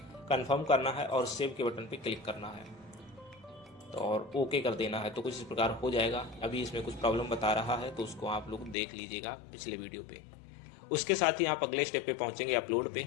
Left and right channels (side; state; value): right; drops out; at 8.8 s